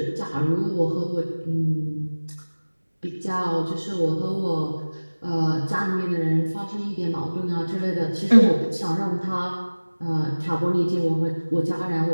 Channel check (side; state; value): both; inverted; correlation -1.00